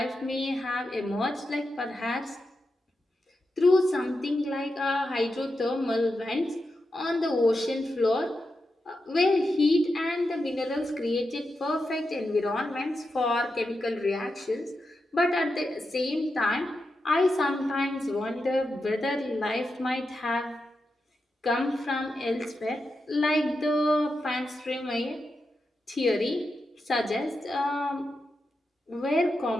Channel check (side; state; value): both; normal; correlation 0.88